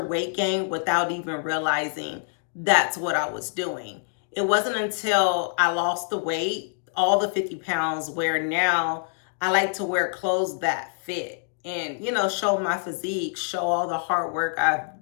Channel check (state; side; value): silent; right; digital silence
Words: weight gain without even realizing that's what I was doing. It wasn't until I lost the weight, all the 50 pounds, where now I like to wear clothes that fit and, show my physique, show all the hard work I've